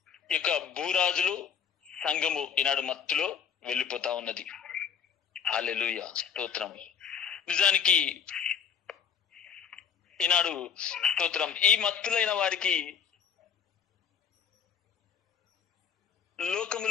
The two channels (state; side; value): quieter; right; 7.4 dB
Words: యొక్క భూరాజులు సంఘము ఈనాడు మత్తులో వెళ్ళిపోతా ఉన్నది. హల్లెలూయా. స్తోత్రం. నిజానికి ఈనాడు స్తోత్రం, ఈ మత్తులైన వారికి